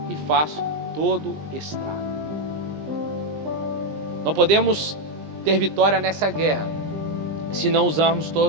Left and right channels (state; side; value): late; left; 20 ms